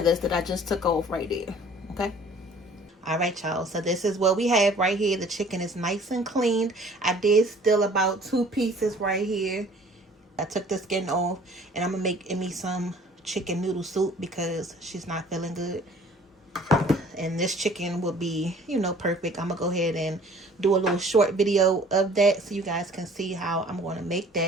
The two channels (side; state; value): both; normal; correlation 0.52